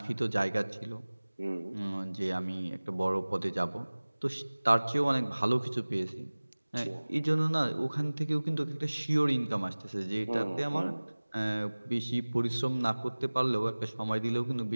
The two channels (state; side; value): inverted; both; correlation -1.00